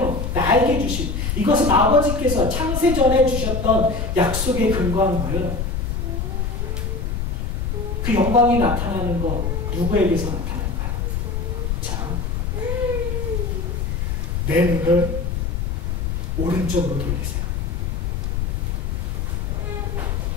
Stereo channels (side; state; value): left; noise; rumble, 1 dB below the sound